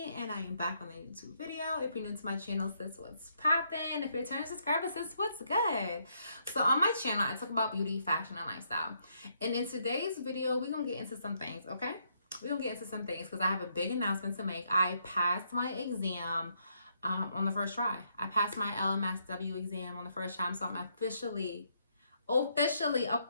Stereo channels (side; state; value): both; inverted; correlation -0.74